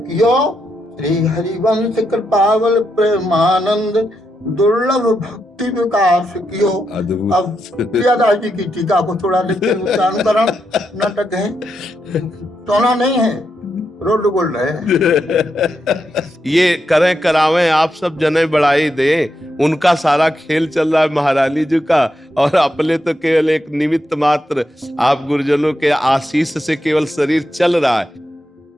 श्री हरिवंश कृपावल प्रेमानंद, दुर्लभ भक्ति विकास कियो। अब प्रियादास जी की टीका को थोड़ा लेकिन उच्चारण नाटक है, टोना नहीं है, रोड बोल रहे हैं। ये करें करावें आप सब जने बढ़ाई दे, उनका सारा खेल चल रहा है महारानी जी का, और अपने तो केवल एक निमित्त मात्र, आप गुरुजनों के आशीष से केवल शरीर चल रहा है।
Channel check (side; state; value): both; normal; correlation 0.83